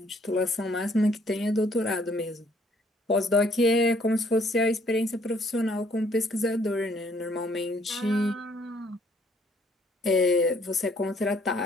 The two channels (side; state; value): both; normal; correlation 0.64